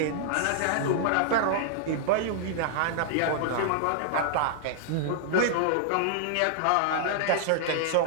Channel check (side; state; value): both; different; correlation -0.01